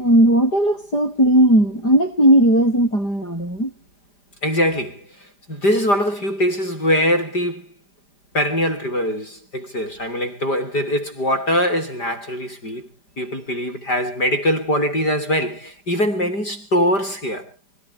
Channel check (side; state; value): right; late; 5.0 ms